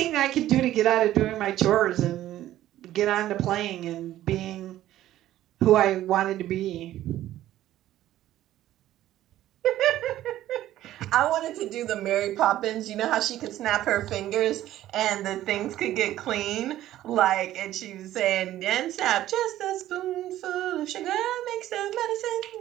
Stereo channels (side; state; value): left; quieter; 13.6 dB